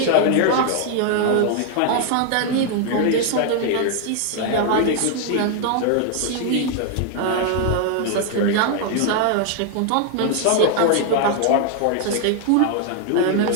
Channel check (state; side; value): different; both; correlation 0.00